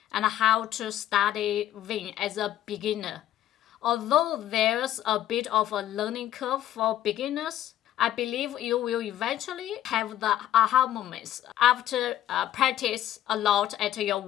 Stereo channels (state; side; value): quieter; right; 12.5 dB